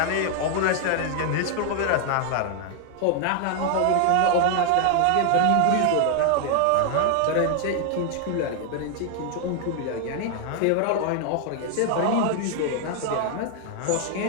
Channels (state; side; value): different; both; correlation 0.00